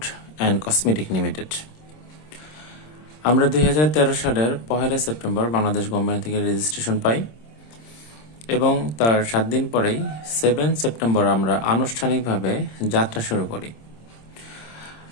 and cosmetic limited. আমরা 2013 সালের 1 সেপ্টেম্বর বাংলাদেশ গভর্নমেন্ট থেকে রেজিস্ট্রেশন পাই এবং তার 7 দিন পরেই 7 সেপ্টেম্বর আমরা আনুষ্ঠানিকভাবে যাত্রা শুরু করি।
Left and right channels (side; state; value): right; late; 26 ms